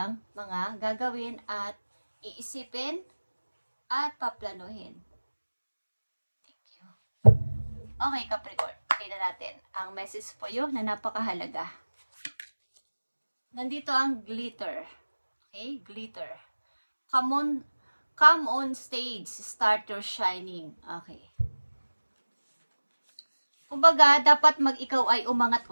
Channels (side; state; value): both; inverted; correlation -1.00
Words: mga gagawin at iisipin at paplanuhin. Thank you. Okay, Capricorn. Tingnan natin ang message po yun na napakahalaga. Nandito ang glitter. Okay, glitter. Come on stage. Start your shining. Okay. Kumbaga, dapat ikaw ay umangat